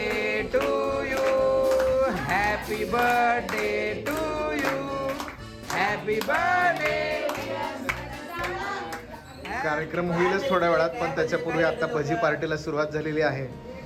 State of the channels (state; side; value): identical; both; correlation 1.00